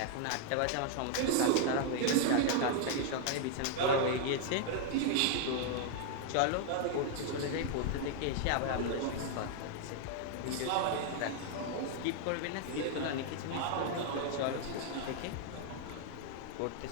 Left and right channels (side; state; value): both; different; correlation 0.00